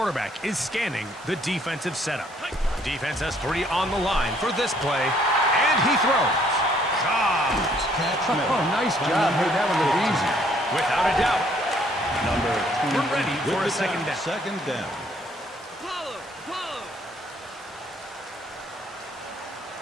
is scanning the defensive setup. Defense has 3 on the line for this play, and he throws. Caught. Catch Oh, made. nice by job. number Made that one look 15. easy. Without a doubt. Number 20. We're ready with for a the second tackle. down. Second down.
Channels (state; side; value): normal; both; correlation 0.64